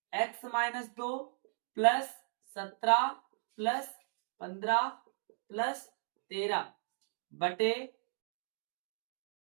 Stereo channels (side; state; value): left; silent; digital silence